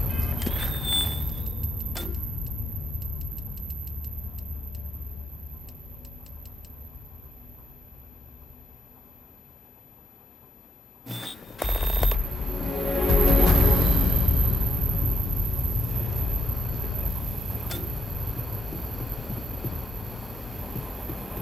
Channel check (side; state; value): both; normal; correlation 0.80